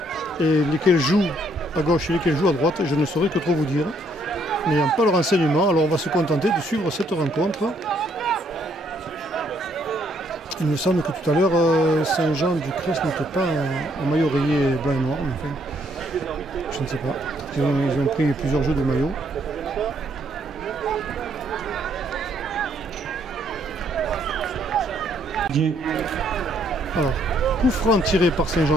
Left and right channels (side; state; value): both; normal; correlation 0.69